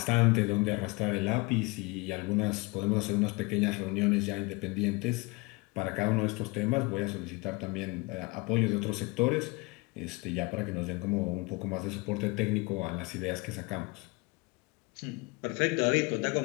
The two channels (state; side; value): quieter; right; 26.1 dB